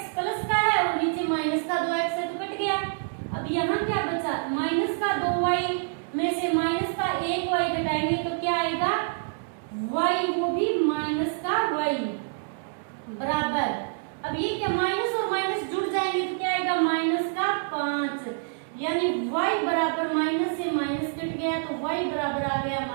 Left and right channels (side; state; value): left; silent; digital silence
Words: प्लस का है और नीचे माइनस का 2x है तो कट गया। अब यहाँ क्या बचा माइनस का 2y में से माइनस का 1y घटाएंगे तो क्या आएगा y, वो भी माइनस का y बराबर। अब ये क्या माइनस और माइनस जुड़ जाएंगे तो क्या आएगा माइनस का 5 यानी y बराबर माइनस से माइनस कट गया तो y बराबर आ गया